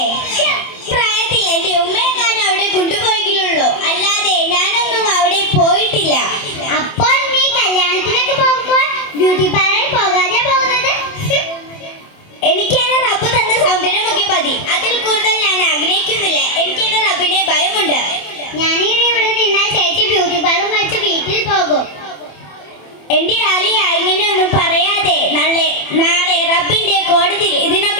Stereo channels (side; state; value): right; late; 27 ms